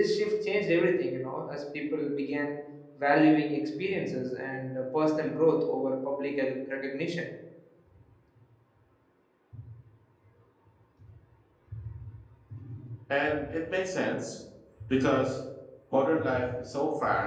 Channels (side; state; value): both; identical; correlation 1.00